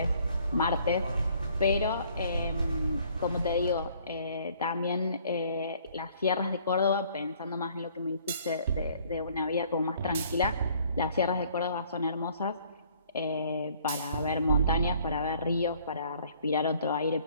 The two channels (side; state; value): both; inverted; correlation -0.59